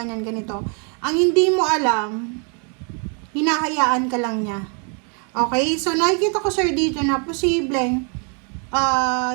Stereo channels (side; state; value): left; quieter; 39.4 dB